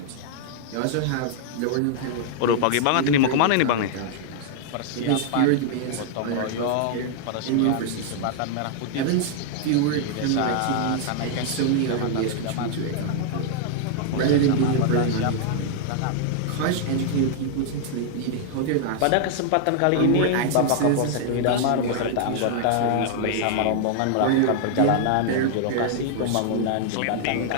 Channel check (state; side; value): different; both; correlation -0.01